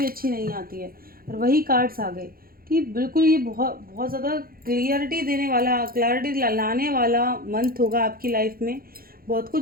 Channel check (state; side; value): late; left; 0.43 ms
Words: अच्छी नहीं आती है, और वही कार्ड्स आ गए कि बिल्कुल ये बहुत बहुत ज़्यादा क्लियरिटी देने वाला, क्लैरिटी लाने वाला मंथ होगा आपकी लाइफ में। बहुत